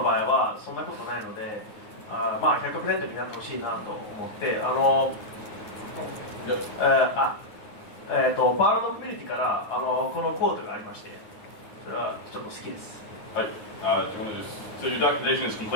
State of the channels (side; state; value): right; late; 9.4 ms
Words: 場合はそんなことないのでまあ 100% になってほしいなと思ってパールのコミュニティからこのコートがありましてそれはちょっと好きです Hi. Do you want to just... So your documentation is